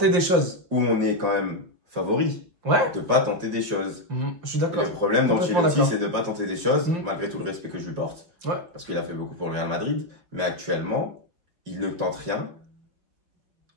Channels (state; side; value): late; left; 5.7 ms